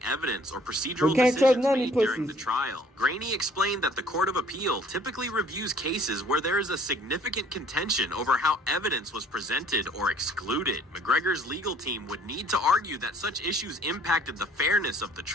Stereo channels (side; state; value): both; normal; correlation 0.57